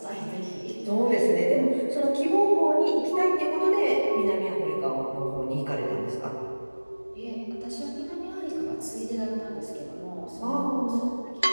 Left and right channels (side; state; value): both; inverted; correlation -1.00